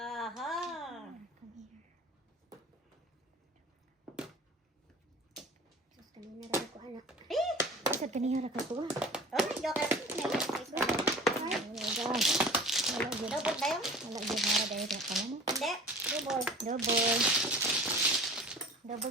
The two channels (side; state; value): both; normal; correlation 0.41